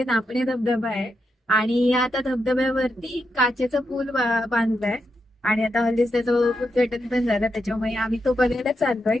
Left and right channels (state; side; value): normal; both; correlation 0.84